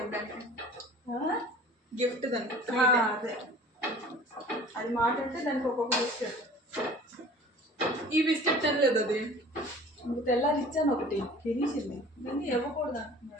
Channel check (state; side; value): normal; both; correlation 0.45